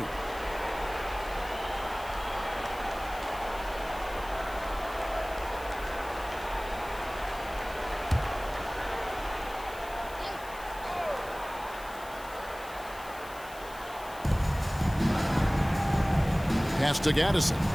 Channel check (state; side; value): noise; left; hiss, 18 dB below the sound